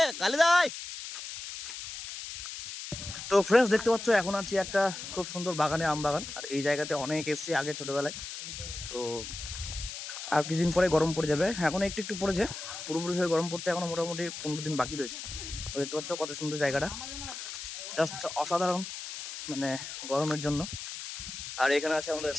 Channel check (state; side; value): noise; left; hiss, 9 dB below the sound